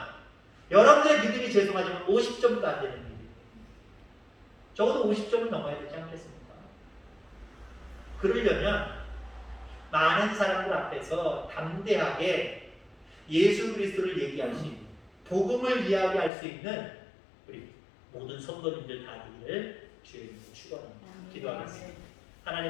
여러분들의 믿음이 죄송하지만 50점도 안 되는 믿음. 적어도 50점은 넘어야 되지 않겠습니까? 그러려면 많은 사람들 앞에서 담대하게 예수 그리스도를 얘기할 수 있는, 복음을 이야기할 수 있는 우리 모든 성도님들 다 되기를 주의 이름으로 축원합니다. 기도하겠습니다.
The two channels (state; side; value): drops out; right; at 16.3 s